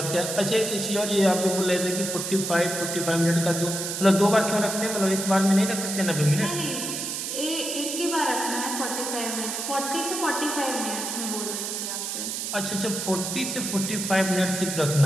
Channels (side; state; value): right; noise; hiss, 4 dB below the sound